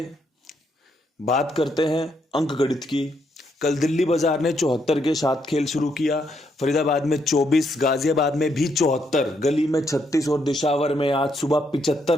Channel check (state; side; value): normal; both; correlation 0.76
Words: बात करते हैं अंक गणित की। कल दिल्ली बाजार ने 74 के साथ खेल शुरू किया। फरीदाबाद में 24, गाजियाबाद में भी 74, गली में 36 और दिशावर में आज सुबह